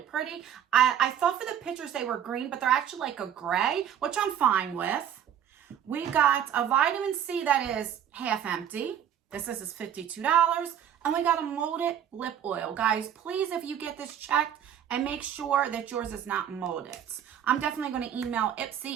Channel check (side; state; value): left; quieter; 9.6 dB